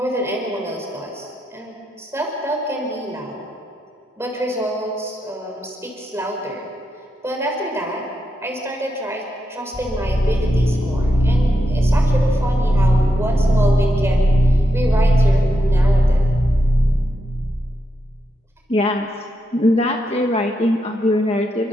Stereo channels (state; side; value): normal; both; correlation 0.85